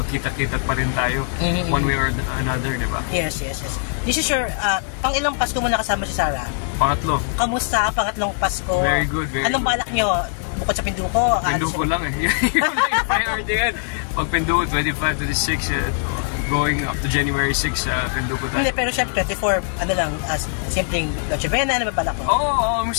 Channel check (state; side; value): silent; right; 65 dB below the other